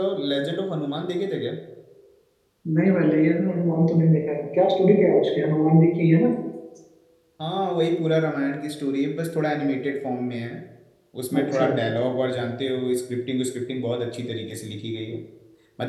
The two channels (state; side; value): identical; both; correlation 1.00